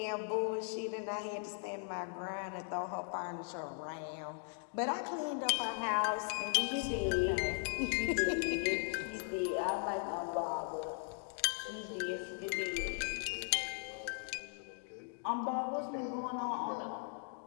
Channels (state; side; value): silent; right; 52 dB below the other